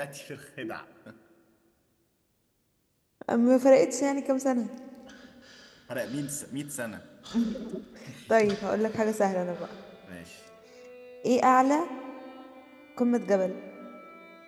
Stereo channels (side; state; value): both; identical; correlation 1.00